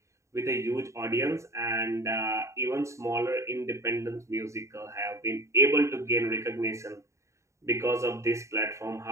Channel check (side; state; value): left; late; 0.14 ms